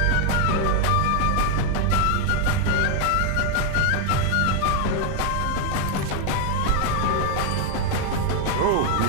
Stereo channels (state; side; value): different; both; correlation 0.01